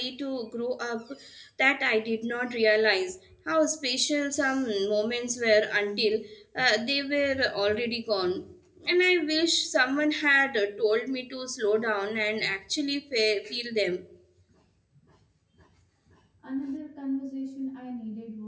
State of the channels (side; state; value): both; identical; correlation 1.00